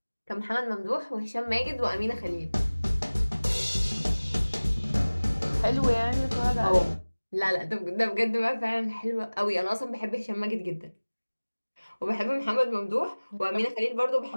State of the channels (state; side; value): inverted; both; correlation -1.00